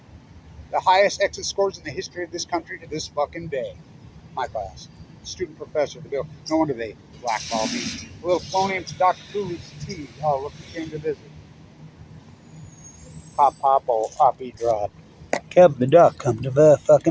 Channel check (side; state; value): both; identical; correlation 1.00